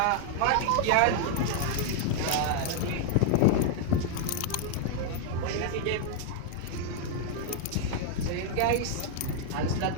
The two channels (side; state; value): both; different; correlation 0.00